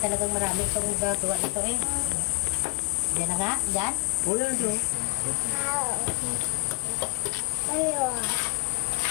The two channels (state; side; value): quieter; right; 30.9 dB